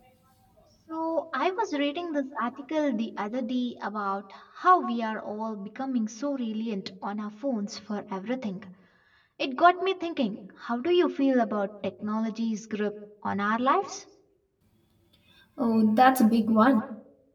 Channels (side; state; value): both; identical; correlation 1.00